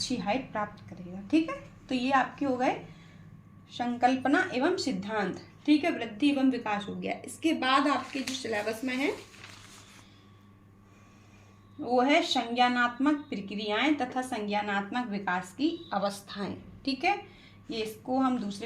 हाइट प्राप्त करेगा। ठीक है, तो ये आपके हो गए संकल्पना एवं सिद्धांत। ठीक है, वृद्धि एवं विकास हो गया। इसके बाद आपके जो सिलेबस में है वो है संज्ञानात्मक प्रक्रियाएं तथा संज्ञानात्मक विकास की अवस्थाएं। ठीक है, ये इसको हम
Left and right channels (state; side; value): identical; both; correlation 1.00